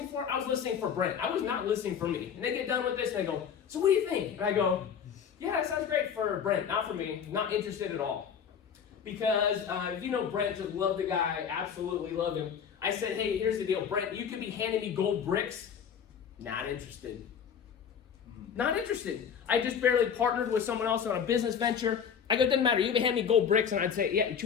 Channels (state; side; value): quieter; right; 7.5 dB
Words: for? I was listening for Brent. I was not listening for me. And they get done with this, and they go, "So what do you think?" And I go, "Yeah, that sounds great for Brent, not for me. Not interested at all." Because if you know Brent, just love the guy, absolutely love him. I said, "Hey, here's the deal, Brent. You could be handing me gold bricks. Not interested. Not interested. I just barely partnered with someone else on a business venture. I go, doesn't matter. You can hand me gold bricks," and I'd say, "Yeah, you're